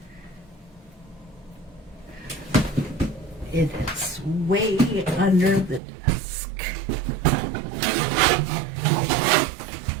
It is way under the desk.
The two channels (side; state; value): left; drops out; at 5.8 s